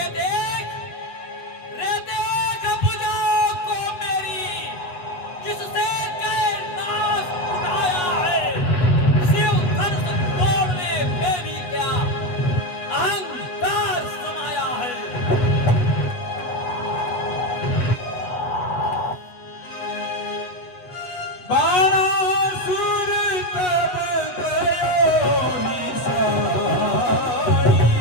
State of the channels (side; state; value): right; late; 8.2 ms